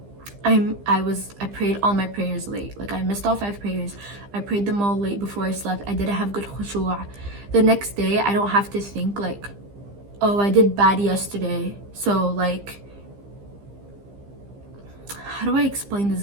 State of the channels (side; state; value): left; late; 15 ms